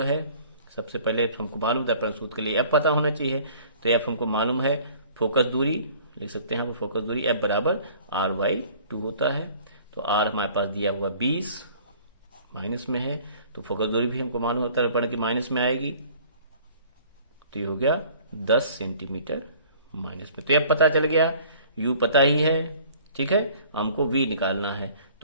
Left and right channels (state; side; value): inverted; both; correlation -0.52